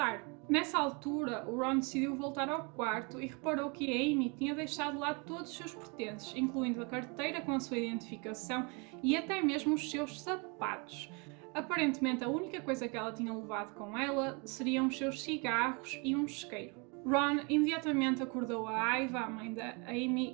Nessa altura, o Ron decidiu voltar ao quarto e reparou que a Amy tinha deixado lá todos os seus pertences, incluindo a carteira com a sua identificação e até mesmo os seus sapatos. Aparentemente, a única coisa que ela tinha levado com ela seriam os seus cigarros e um isqueiro. Ron imediatamente acordou a Aiva, a mãe da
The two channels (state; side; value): quieter; left; 32.1 dB